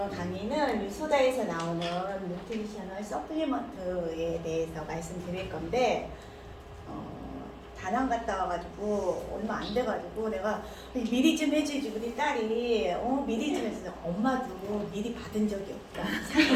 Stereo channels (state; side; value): identical; both; correlation 1.00